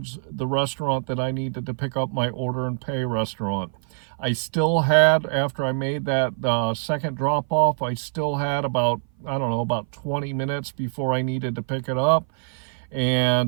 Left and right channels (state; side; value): silent; left; 57 dB below the other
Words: the restaurant that I needed to pick up my order and pay restaurant. I still had, after I made that second drop-off, I still had about 20 minutes before I needed to pick it up.